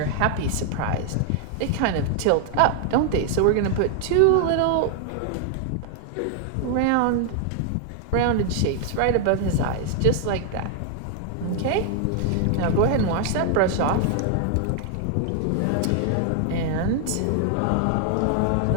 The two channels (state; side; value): different; both; correlation 0.00